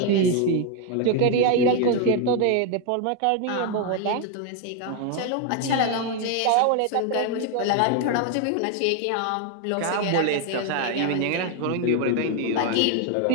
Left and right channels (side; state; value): both; different; correlation 0.01